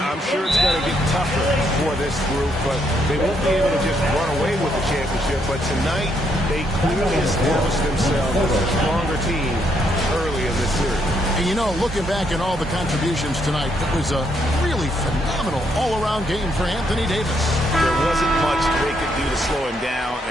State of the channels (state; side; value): normal; both; correlation 0.74